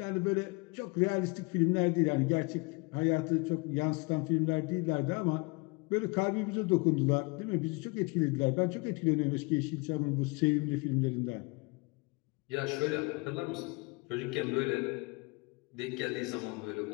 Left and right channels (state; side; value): quieter; right; 28.7 dB